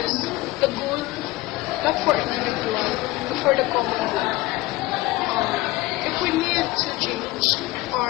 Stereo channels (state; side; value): quieter; right; 19.0 dB